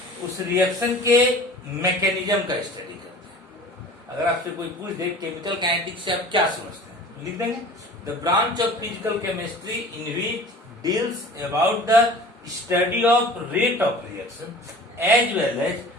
उस रिएक्शन के मैकेनिज्म का स्टडी करते हैं। अगर आपसे कोई पूछ दे केमिकल काइनेटिक्स से आप क्या समझते हैं, लिख देंगे the branch of physical chemistry in which deals about the study of rate of reaction as well as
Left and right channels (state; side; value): normal; both; correlation 0.42